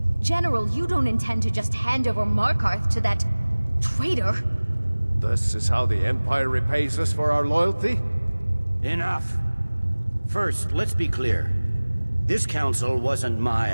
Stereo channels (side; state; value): both; inverted; correlation -1.00